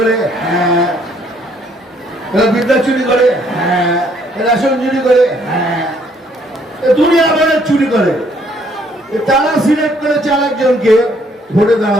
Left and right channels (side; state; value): both; normal; correlation 0.66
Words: হ্যাঁ। এরা বিদ্যা চুরি করে, হ্যাঁ। রেশন চুরি করে, হ্যাঁ। দুনিয়া ভরে চুরি করে। তারা সিলেক্ট করেছে আরেকজনকে ভোটে